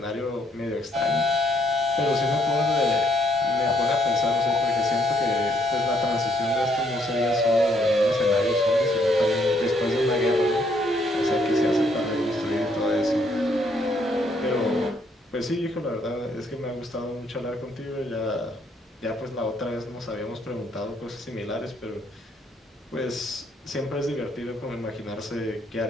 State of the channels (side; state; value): both; normal; correlation 0.70